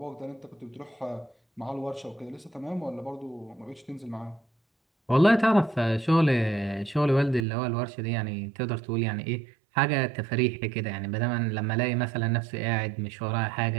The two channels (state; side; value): drops out; left; at 7.4 s